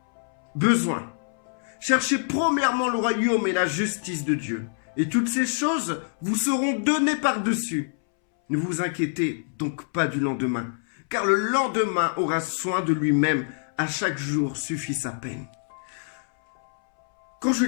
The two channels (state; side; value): silent; right; 61 dB below the other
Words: besoin. Cherchez premièrement le royaume et la justice de Dieu, et toutes ces choses vous seront données par-dessus. Ne vous inquiétez donc pas du lendemain, car le lendemain aura soin de lui-même. À chaque jour suffit sa peine. Quand je